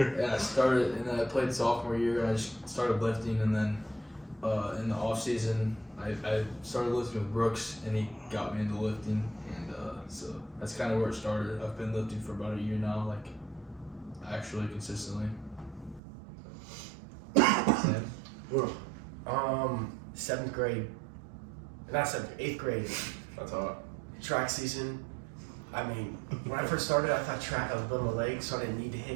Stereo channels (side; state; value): left; drops out; at 16.0 s